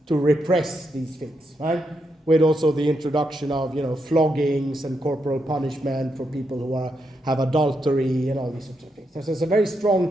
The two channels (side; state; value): both; normal; correlation 0.82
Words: to repress these things, right? With also the introduction of, floggings and corporal punishment for people who have adultery and all these sorts of things. So there's a very